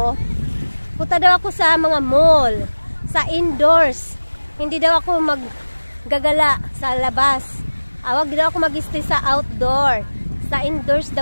punta daw ako sa mga mall, sa indoors. Hindi daw ako maggagala sa labas. Wag daw ako mag-stay sa outdoor. Sa indoors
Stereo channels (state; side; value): inverted; both; correlation -1.00